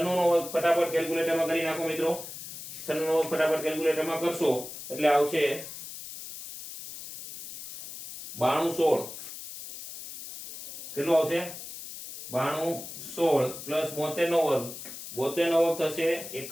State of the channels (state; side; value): noise; left; hiss, 11 dB below the sound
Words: નો વર્ગ ફટાફટ કેલ્ક્યુલેટરમાં કરી નાખો મિત્રો 96 નો વર્ગ ફટાફટ કેલ્ક્યુલેટરમાં કરશો એટલે આવશે 92 16 કેટલું આવશે 92 16 પ્લસ 72 નો વર્ગ 72 નો વર્ગ થશે